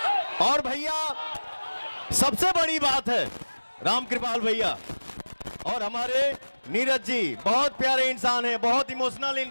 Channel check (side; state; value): both; inverted; correlation -1.00